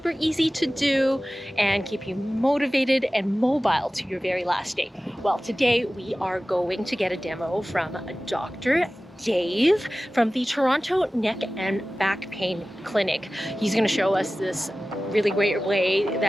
easy to do, and keep you motivated and mobile to your very last day? Well, today we are going to get a demo from Dr. Dave from the Toronto Neck and Back Pain Clinic. He's going to show us this really great way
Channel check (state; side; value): normal; both; correlation 0.96